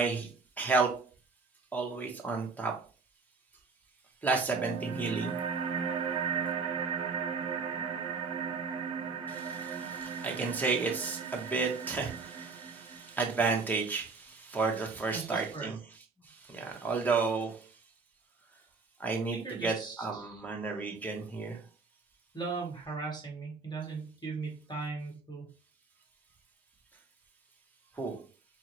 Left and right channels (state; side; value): quieter; left; 4.4 dB